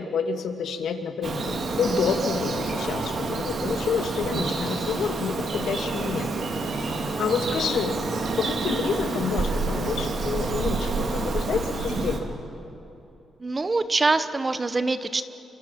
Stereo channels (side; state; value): both; normal; correlation 0.77